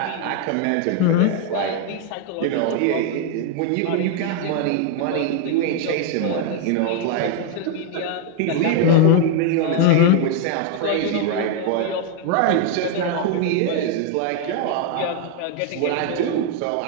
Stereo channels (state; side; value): different; both; correlation 0.00